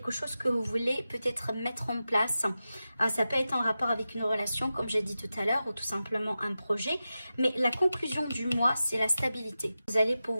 chose que vous voulez peut-être mettre en place. Ça peut être en rapport avec une relation, comme j'ai dit tout à l'heure, ou tout simplement un projet. Mais la conclusion du mois, c'est la stabilité. Vous allez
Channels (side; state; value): both; inverted; correlation -0.93